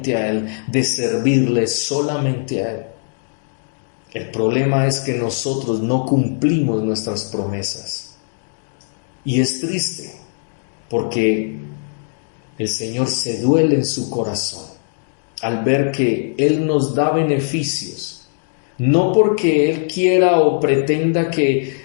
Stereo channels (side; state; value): right; silent; digital silence